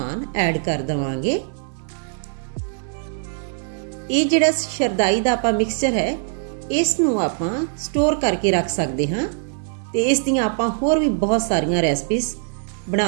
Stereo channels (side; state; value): left; silent; digital silence